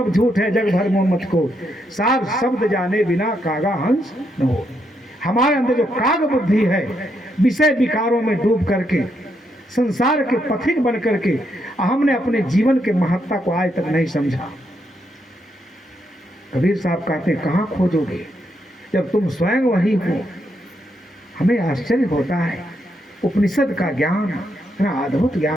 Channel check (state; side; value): normal; both; correlation 0.78